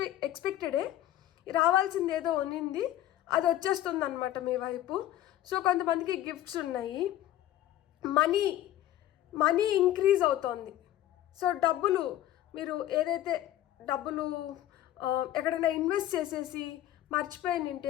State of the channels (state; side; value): quieter; right; 13.3 dB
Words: ఎక్స్పెక్టెడే రావాల్సింది ఏదో ఉన్నింది, అది వచ్చేస్తుంది అనమాట మీ వైపు. సో కొంతమందికి గిఫ్ట్స్ ఉన్నాయి. మనీ ఇంక్రీజ్ అవుతోంది. సో డబ్బులు మీరు ఏదైతే డబ్బులు ఎక్కడైనా ఇన్వెస్ట్ చేసేసి మర్చిపోయినంటే